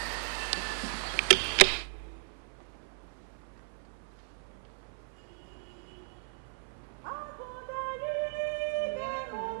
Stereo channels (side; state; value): left; silent; 54 dB below the other